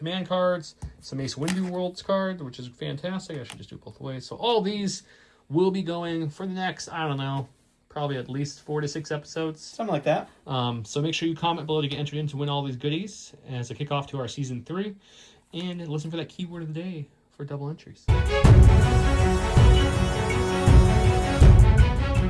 cards, some Mace Windu Worlds card, which is fantastic. I should just do it both ways. So all these will be going for the next, I don't know, probably at least 4 to 6 episodes. Something like that. So make sure you comment below to get entered in to win all these goodies as a kickoff to our Season 3. And listen for that keyword of the day for double entries.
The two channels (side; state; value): both; identical; correlation 1.00